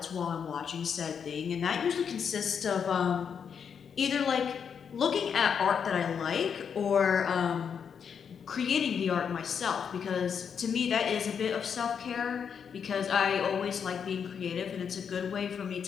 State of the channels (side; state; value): right; quieter; 7.1 dB